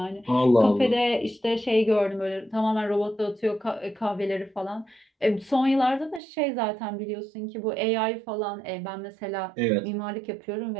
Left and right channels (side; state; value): left; drops out; at 6.2 s